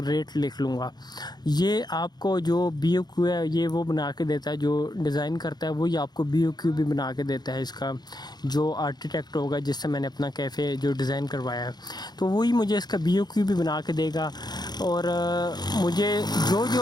लिख लूँगा। ये आपको जो BOQ है ये वो बना के देता है, जो डिज़ाइन करता है वही आपको BOQ भी बना के देता है। इसका जो आर्किटेक्ट होगा जिससे मैंने अपना कैफ़े जो डिज़ाइन करवाया है तो वही मुझे इसका BOQ भी बना के देगा। और मुझे जो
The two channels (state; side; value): late; right; 0.20 ms